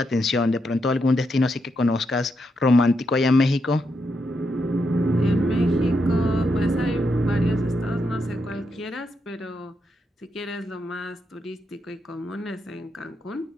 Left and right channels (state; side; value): normal; both; correlation 0.82